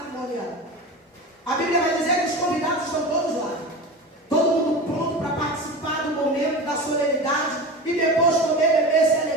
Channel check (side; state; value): both; normal; correlation 0.29